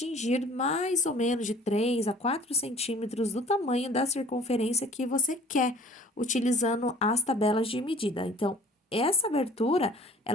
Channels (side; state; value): both; normal; correlation 0.50